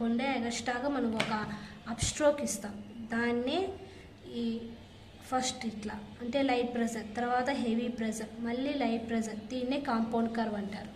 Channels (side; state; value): both; identical; correlation 1.00